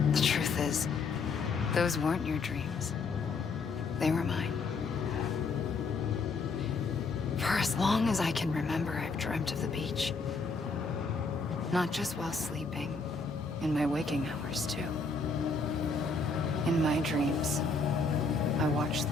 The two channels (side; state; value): right; quieter; 4.2 dB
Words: The truth is, those weren't your dreams. They were mine. For as long as I can remember, I've dreamt of the beach. Not just while sleeping, in my waking hours too. In my dreams, I watched